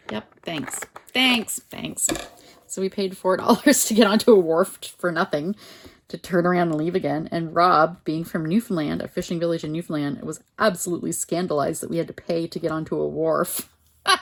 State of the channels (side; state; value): both; identical; correlation 1.00